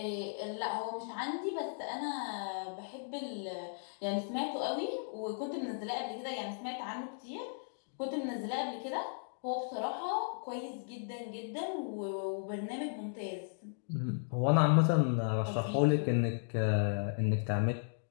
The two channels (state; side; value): silent; right; digital silence